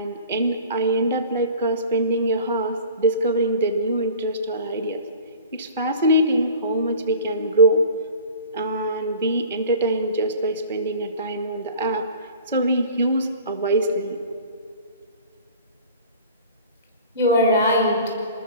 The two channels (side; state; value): both; inverted; correlation -0.42